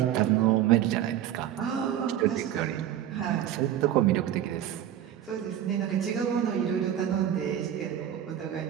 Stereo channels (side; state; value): left; quieter; 10.9 dB